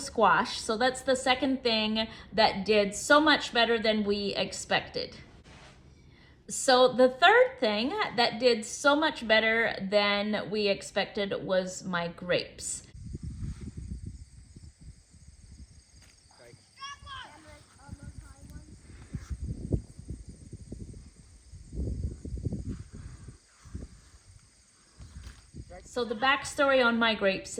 So that's the second thing that did so much better than we expected. So the third thing that did so much better than we expected was my grapes. So the backstory on my grapes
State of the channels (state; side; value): identical; both; correlation 1.00